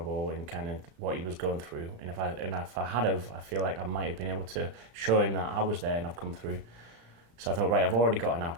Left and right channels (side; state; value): left; late; 34 ms